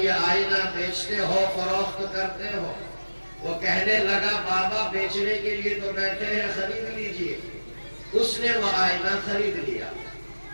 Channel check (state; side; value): inverted; both; correlation -1.00